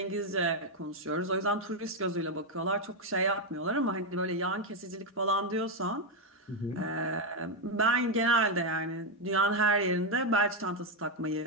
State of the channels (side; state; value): both; normal; correlation 0.03